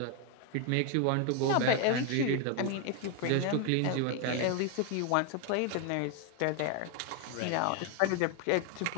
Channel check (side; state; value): both; different; correlation 0.01